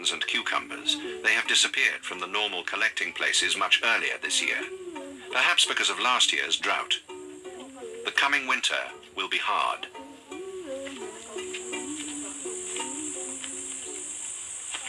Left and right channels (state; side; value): identical; both; correlation 1.00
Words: and cucumbers. They have disappeared from the normal collecting places much earlier this year, perhaps because of last year's drought. The coming winter will be hard.